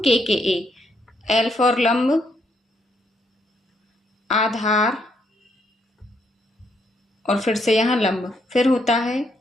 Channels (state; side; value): normal; both; correlation 0.74